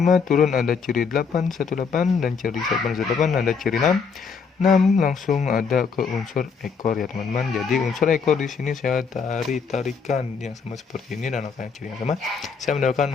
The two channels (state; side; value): quieter; right; 5.6 dB